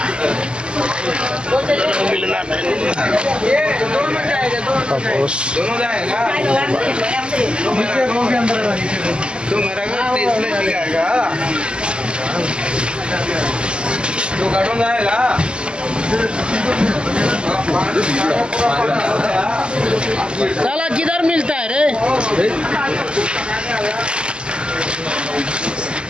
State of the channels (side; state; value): left; late; 0.050 ms